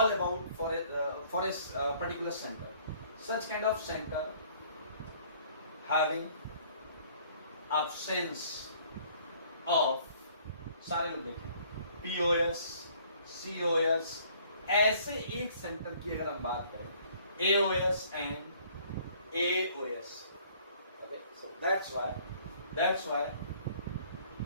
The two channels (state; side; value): inverted; both; correlation -0.58